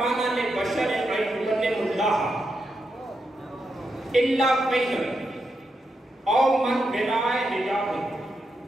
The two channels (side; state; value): both; normal; correlation 0.84